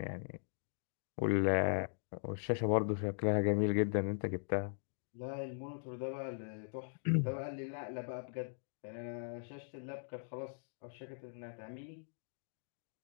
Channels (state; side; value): silent; right; digital silence